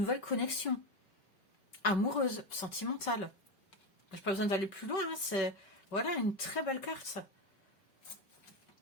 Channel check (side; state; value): right; late; 5.0 ms